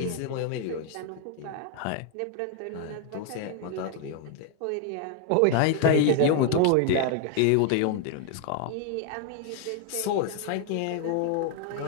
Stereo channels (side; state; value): both; different; correlation 0.00